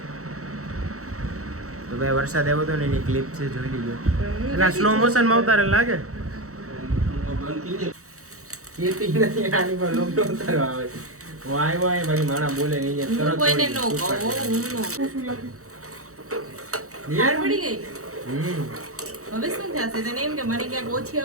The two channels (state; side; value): late; left; 0.65 ms